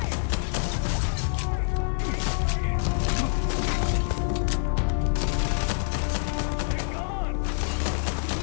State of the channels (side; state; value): right; silent; digital silence